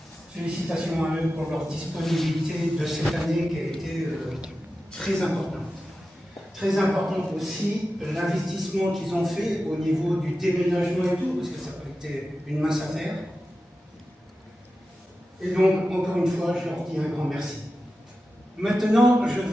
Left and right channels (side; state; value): both; normal; correlation 0.93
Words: félicitations à eux pour leur disponibilité de cette année qui a été très importante. Très importante aussi l'investissement qu'ils ont fait au niveau du déménagement et tout, parce que ça n'a pas été une mince affaire. Et donc, encore une fois, je leur dis un grand merci. Maintenant, je